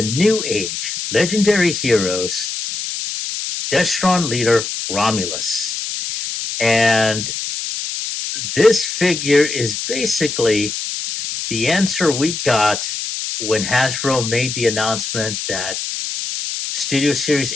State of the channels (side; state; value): left; noise; hiss, 5 dB below the sound